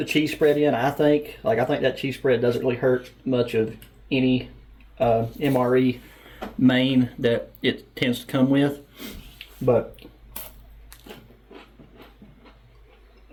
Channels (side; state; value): both; identical; correlation 1.00